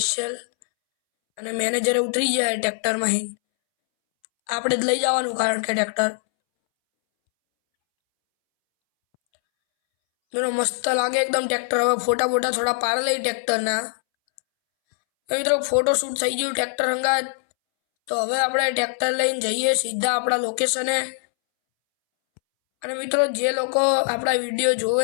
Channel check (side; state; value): right; silent; 64 dB below the other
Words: અને મેનેજરે ઉતરી જાય ટ્રેક્ટરમાં. આપણે જ લઈ જવાનું કારણ કે ટ્રેક્ટર મિત્રો મસ્ત લાગે એકદમ ટ્રેક્ટર. હવે ફોટા થોડા પાડ લઈ ટ્રેક્ટરના. મિત્રો ફોટોશૂટ થઈ ગયું ટ્રેક્ટર હંગાત. તો હવે આપણે ટ્રેક્ટર લઈને જઈએ સીધા આપણા લોકેશને. અને મિત્રો જે લોકો આપણા વિડીયો